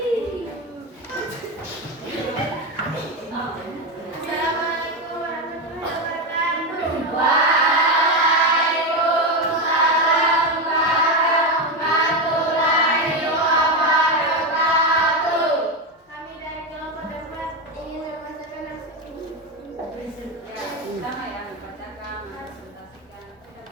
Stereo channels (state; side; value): normal; both; correlation 0.13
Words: warahmatullahi wabarakatuh. Kami dari kelompok dapat ingin membacakan Sama ya, bacakan, presentasikan.